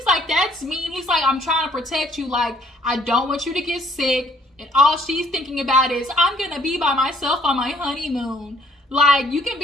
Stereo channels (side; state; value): both; normal; correlation 0.63